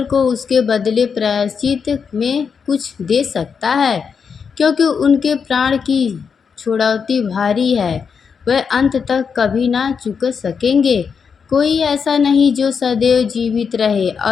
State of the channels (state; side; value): quieter; right; 6.2 dB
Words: को उसके बदले प्रायश्चित में कुछ दे सकता है, क्योंकि उनके प्राण की छुड़ौती भारी है। वह अंत तक कभी ना चुक सकेंगे। कोई ऐसा नहीं जो सदैव जीवित रहे